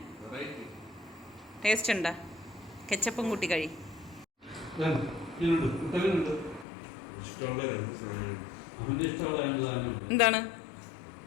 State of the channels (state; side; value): drops out; right; at 6.7 s